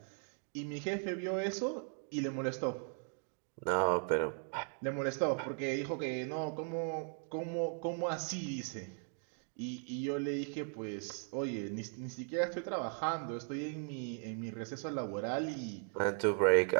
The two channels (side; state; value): left; silent; 53 dB below the other